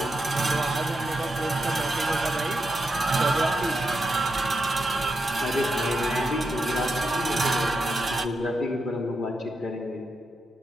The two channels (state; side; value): normal; both; correlation 0.85